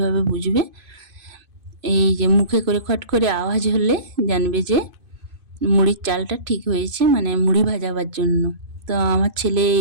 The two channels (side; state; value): left; late; 2.5 ms